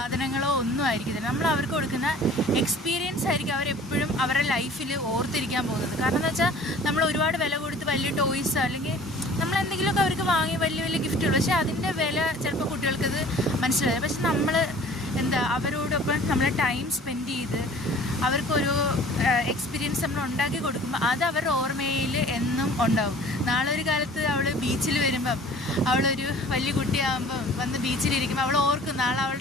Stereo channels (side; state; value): both; normal; correlation 0.48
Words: ഒന്നും ആയിരിക്കത്തില്ല. നമ്മൾ അവർക്ക് കൊടുക്കുന്ന എക്സ്പീരിയൻസ് ആയിരിക്കും അവരെപ്പോഴും അവരുടെ ലൈഫിൽ ഓർത്തിരിക്കാൻ പോകുന്നത്. കാരണം എന്ന് വെച്ചാൽ നമ്മൾ ഒരുപാട് വില കൊടുത്ത് വലിയ ടോയ്സ് അല്ലെങ്കിൽ നമ്മൾ എന്തെങ്കിലുമൊക്കെ അവർക്ക് വാങ്ങി വലിയ വലിയ ഗിഫ്റ്റുകൾ, പക്ഷേ അതിൻ്റെ വില ചിലപ്പോൾ കുട്ടികൾക്കത് മനസ്സിലായി. പക്ഷെ നമ്മൾ അവരോടൊപ്പം നമ്മൾ ടൈം സ്പെൻഡ് ചെയ്ത് അവർക്കൊരു എക്സ്പീരിയൻസ് നമ്മൾ ഉണ്ടാക്കി കൊടുക്കുമ്പോൾ അത് അവരുടെ ഓർമ്മയിൽ എന്നും ഉണ്ടാവും. നാളെ ഒരു കാലത്ത് അവൾ ബീച്ചിൽ വരുമ്പം, അവളൊരു വലിയ കുട്ടിയാകുമ്പം വന്ന് ബീച്ചിലിരിക്കുമ്പോൾ അവൾ ഓർക്കും നാളെ